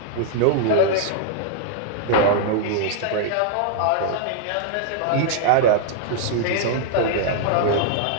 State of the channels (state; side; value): different; both; correlation 0.00